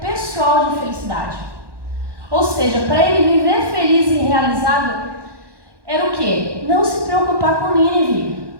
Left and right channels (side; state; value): left; late; 1.1 ms